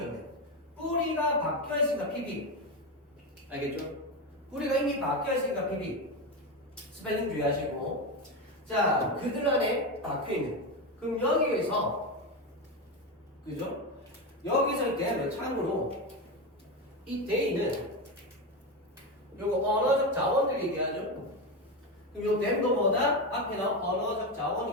뿌리가 박혀있으니까 PB. 알겠죠? 뿌리가 이미 박혀있으니까 PB. 스펠링 주의하시고. 자, 그들 안에 박혀있는. 그럼 여기에서, 그죠? 여기서 이때 참고로 이 데이는 요거 언어적 자원들 얘기하죠? 그럼 요 댐도 뭐다? 앞에 나온 언어적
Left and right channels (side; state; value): both; normal; correlation 0.15